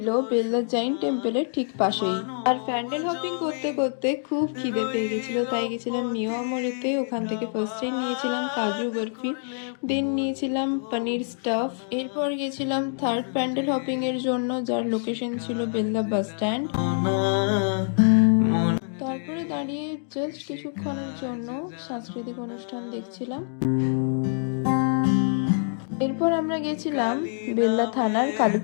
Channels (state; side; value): silent; right; digital silence